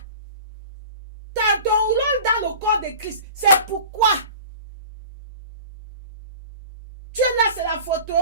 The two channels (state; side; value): inverted; both; correlation -0.40